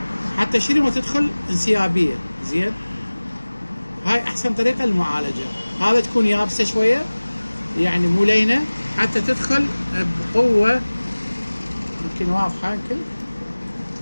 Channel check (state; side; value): inverted; both; correlation -1.00